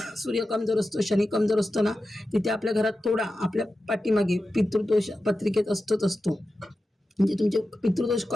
सूर्य कमजोर असतो, शनी कमजोर असतो ना, तिथे आपल्या घरात थोडा आपल्या पाठीमागे पितृदोष पत्रिकेत असतो. म्हणजे तुमचे पितृदोष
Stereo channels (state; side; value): normal; both; correlation 0.92